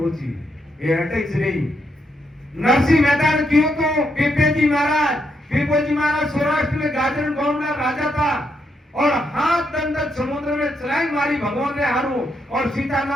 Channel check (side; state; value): both; normal; correlation 0.79